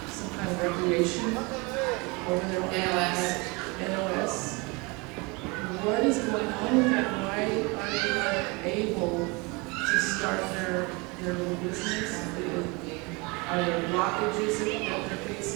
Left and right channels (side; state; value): left; quieter; 27.7 dB